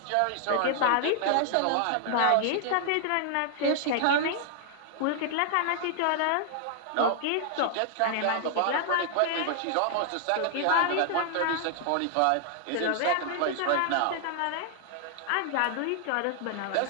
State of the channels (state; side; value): different; both; correlation 0.00